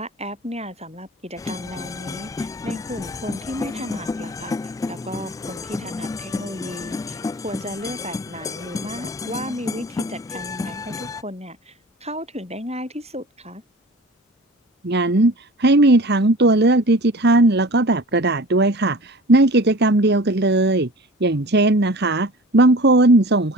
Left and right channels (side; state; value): both; normal; correlation 0.41